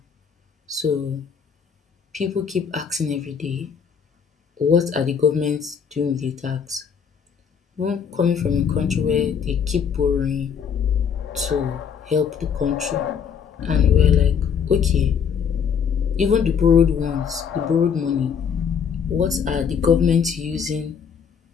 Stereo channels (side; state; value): right; quieter; 7.0 dB